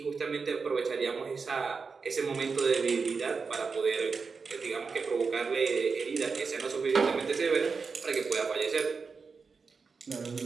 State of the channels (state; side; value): quieter; left; 5.0 dB